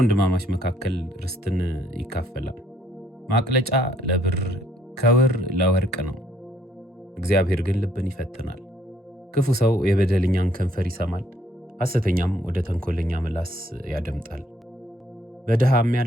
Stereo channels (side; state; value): both; normal; correlation 0.66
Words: መካከል ርስትን ይካፈላል። ማቅለጫ ለብር ከውር ለወርቅ ነው፣ እግዚአብሔር ግን ልብን ይፈትናል። ክፉ ሰው የበደለኛን ከንፈር ይሰማል፣ ሐሰተኛም ወደ ተንኮለኛ ምላስ ያደምጣል። በድሃ